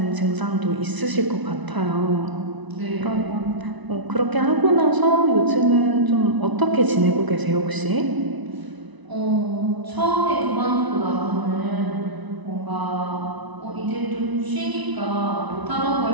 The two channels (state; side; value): late; left; 1.0 ms